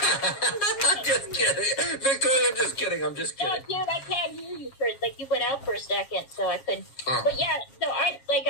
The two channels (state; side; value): late; right; 7.4 ms